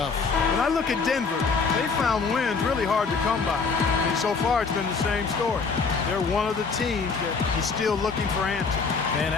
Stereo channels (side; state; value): right; quieter; 4.9 dB